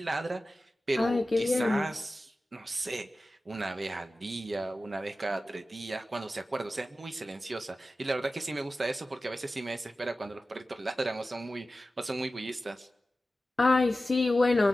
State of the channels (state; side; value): normal; both; correlation 0.95